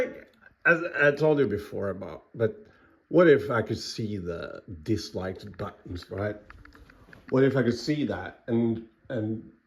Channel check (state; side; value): identical; both; correlation 1.00